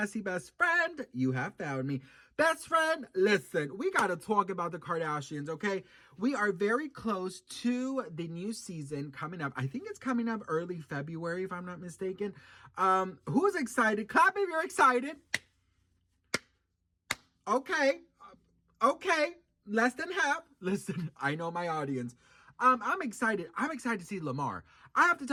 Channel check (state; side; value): identical; both; correlation 1.00